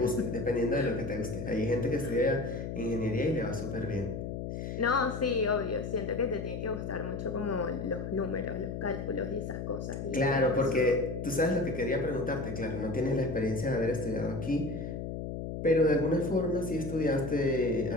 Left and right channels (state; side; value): noise; left; hum, 5 dB below the sound